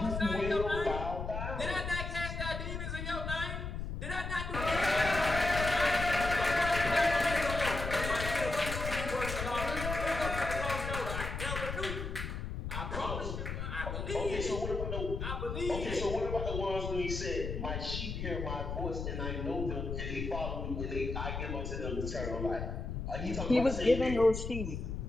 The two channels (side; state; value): left; noise; rumble, 4 dB below the sound